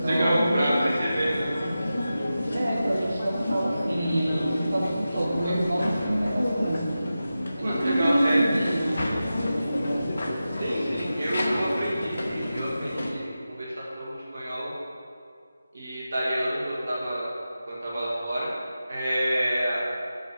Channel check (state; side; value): inverted; both; correlation -0.93